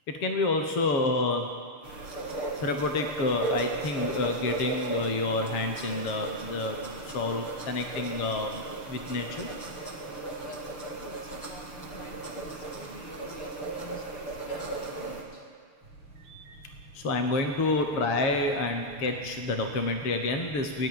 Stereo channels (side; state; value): right; late; 6.7 ms